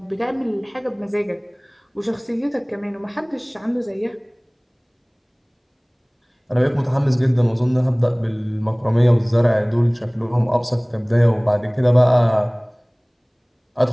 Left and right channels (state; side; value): identical; both; correlation 1.00